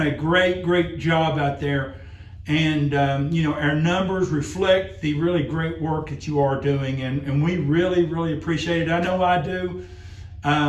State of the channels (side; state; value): both; identical; correlation 1.00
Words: great job out there. And, our numbers reflect the really great work that you are doing. And we really appreciate it. I know I do.